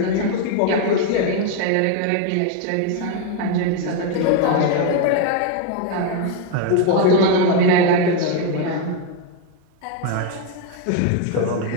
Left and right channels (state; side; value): different; both; correlation 0.01